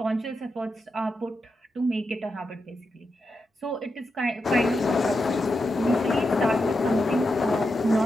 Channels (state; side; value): normal; both; correlation 0.87